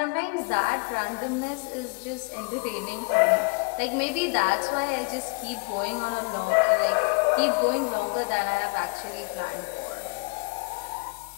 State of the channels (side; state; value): right; quieter; 33.1 dB